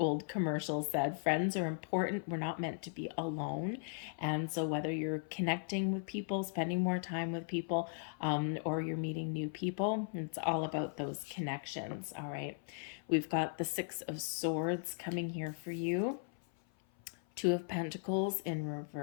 commercial said. Friends are important. We're not meant to be alone. And so whether you're connecting with people, spending more time with people, or you're meeting new people, it's all about those connections. All right. We've got the Six of Swords coming here for you. Two of Pentacles in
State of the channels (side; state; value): right; silent; 53 dB below the other